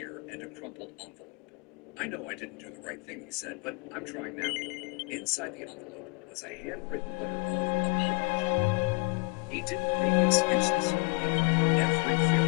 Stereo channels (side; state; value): right; quieter; 30.3 dB